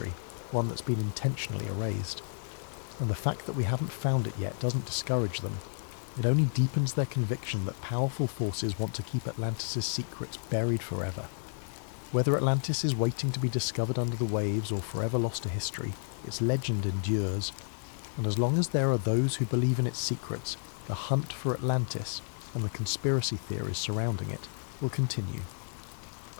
one that's been intentionally erased. And the fact that we haven't found it yet doesn't discourage them. It only deepens their conviction that powerful forces want to keep Atlantis' secrets buried forever. Whether Atlantis is waiting to be discovered under the waves or forever lost to history, its legend endures. And as long as there are those who believe in its secrets, the hunt for Atlantis and the conspiracy theories surrounding it will continue.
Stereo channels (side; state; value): right; silent; 55 dB below the other